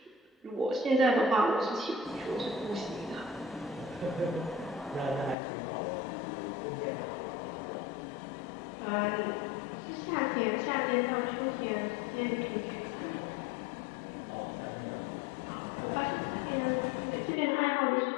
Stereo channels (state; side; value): drops out; right; at 5.4 s